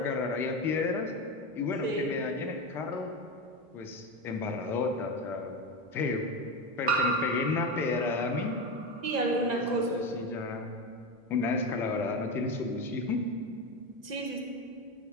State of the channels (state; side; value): late; left; 1.9 ms